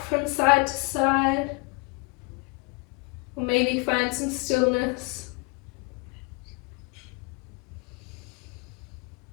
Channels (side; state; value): right; quieter; 29.5 dB